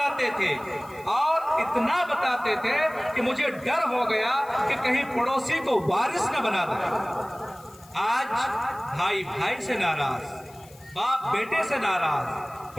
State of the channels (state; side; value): noise; left; hiss, 24 dB below the sound